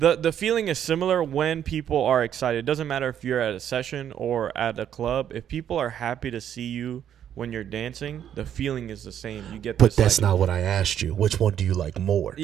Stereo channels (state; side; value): quieter; left; 9.8 dB